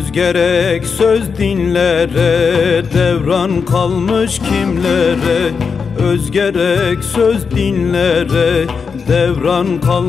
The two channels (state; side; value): quieter; right; 5.6 dB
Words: gerek söz dinlere, devran kalmış kimlere? Öz gerek söz dinlere, devran